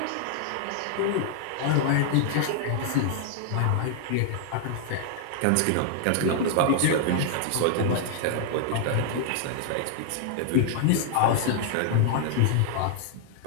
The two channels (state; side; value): different; both; correlation -0.01